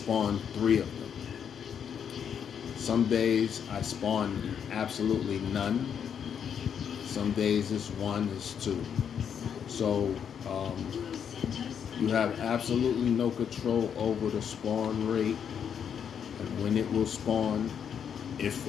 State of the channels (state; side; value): quieter; right; 7.9 dB